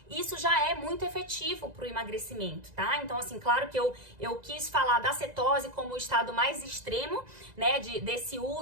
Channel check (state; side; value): late; left; 2.0 ms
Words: isso já é muito efetivo para o emagrecimento, tá? Então, assim, claro que eu quis falar da cetose como o estado mais extremo, né, desse